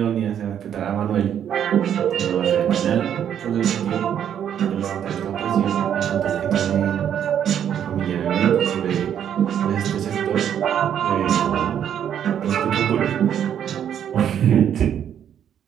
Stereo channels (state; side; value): quieter; left; 9.3 dB